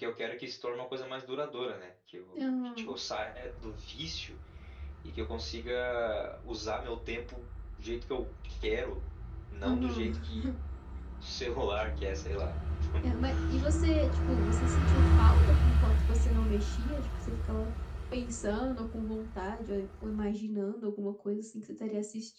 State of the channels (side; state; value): both; identical; correlation 1.00